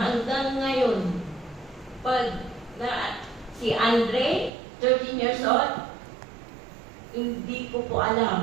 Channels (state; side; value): drops out; left; at 4.5 s